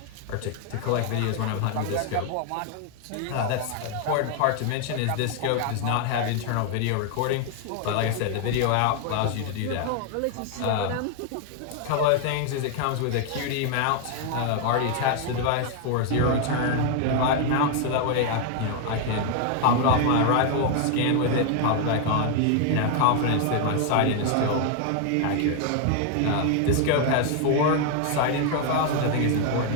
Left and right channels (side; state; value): both; different; correlation 0.00